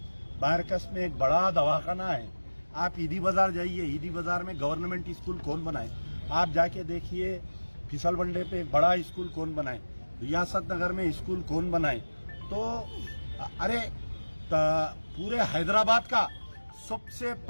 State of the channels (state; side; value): inverted; both; correlation -1.00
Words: बारकस में एक बड़ा दवाखाना है। आप ईदी बाजार जाइए, ईदी बाजार में गवर्नमेंट स्कूल कौन बनाए। आप जाके देखिए फिसल बंडे पे एक बड़ा स्कूल कौन बनाए, रियासत नगर में स्कूल कौन बनाए। तो अरे पूरे हैदराबाद का सबसे